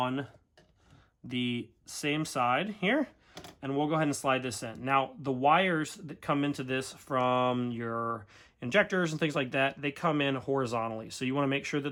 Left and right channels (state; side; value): identical; both; correlation 1.00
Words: the same side here. And we'll go ahead and slide this in. Now, the wires that come into this from your injectors and things like that, they come in horizontally. So you want to make sure